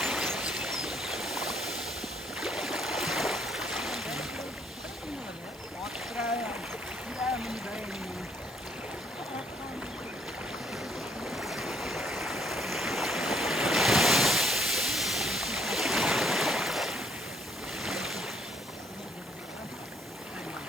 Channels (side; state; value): both; normal; correlation 0.66